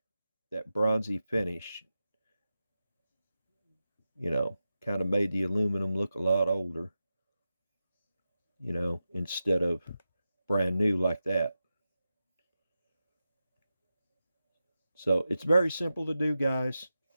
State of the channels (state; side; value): inverted; both; correlation -0.91